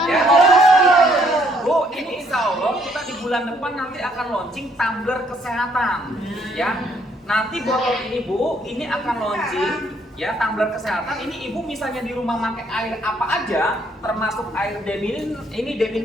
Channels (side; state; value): both; normal; correlation 0.67